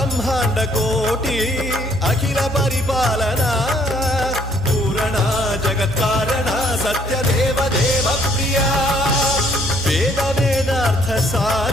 కోటి అఖిల పరిపాలన పూరణ జగత్కారణ సత్యదేవ దేవ ప్రియా వేద వేదార్థ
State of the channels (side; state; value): both; normal; correlation 0.64